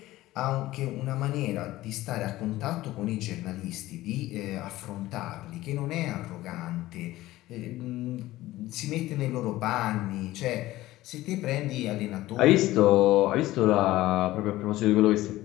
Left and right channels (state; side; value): quieter; right; 16.7 dB